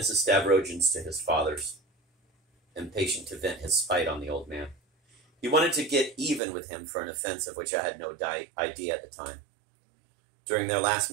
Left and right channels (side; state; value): left; drops out; at 6.4 s